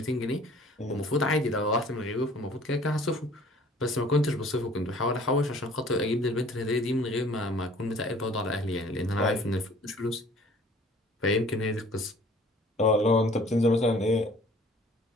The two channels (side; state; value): both; normal; correlation 0.52